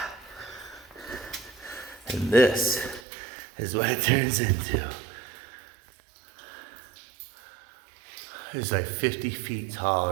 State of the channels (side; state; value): left; drops out; at 3.0 s